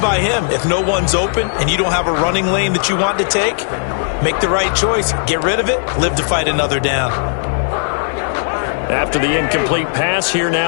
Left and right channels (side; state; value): right; silent; digital silence